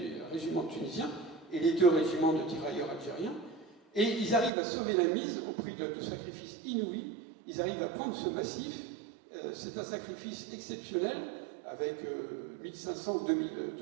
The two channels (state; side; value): drops out; left; at 4.5 s